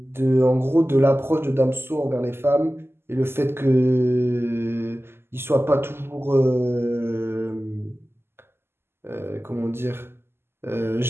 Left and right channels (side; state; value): left; late; 0.12 ms